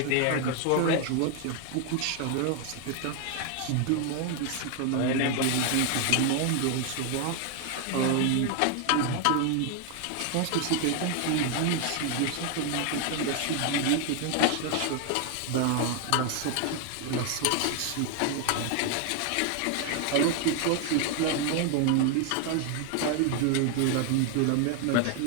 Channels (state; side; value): different; both; correlation 0.01